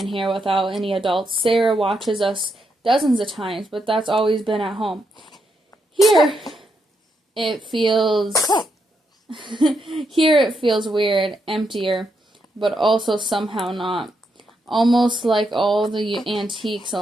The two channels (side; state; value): both; normal; correlation 0.80